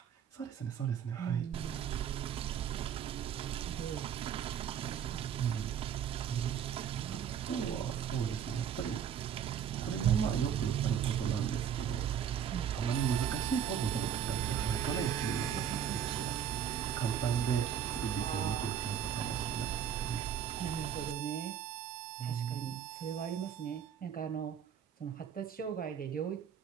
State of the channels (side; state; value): left; quieter; 8.9 dB